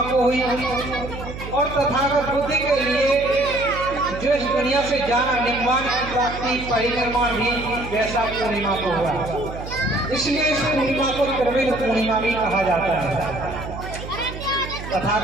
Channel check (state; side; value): noise; right; hum, 10 dB below the sound